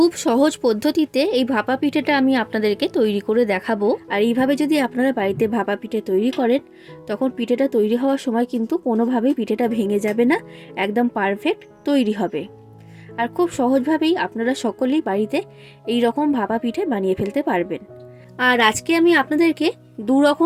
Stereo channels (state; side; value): identical; both; correlation 1.00